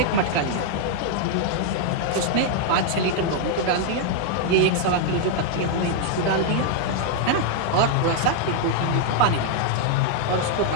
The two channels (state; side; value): different; both; correlation 0.00